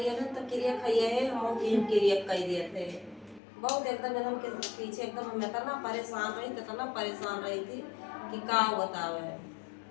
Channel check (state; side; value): drops out; right; at 3.4 s